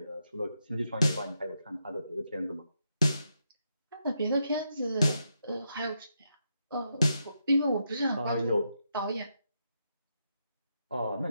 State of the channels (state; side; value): inverted; both; correlation -0.83